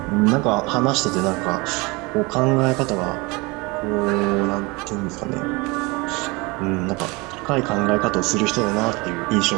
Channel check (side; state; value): left; quieter; 25.6 dB